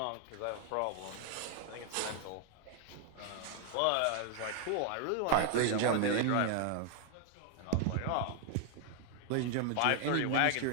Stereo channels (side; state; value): both; different; correlation 0.00